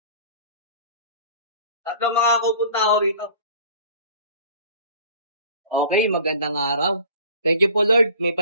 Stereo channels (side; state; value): both; inverted; correlation -0.46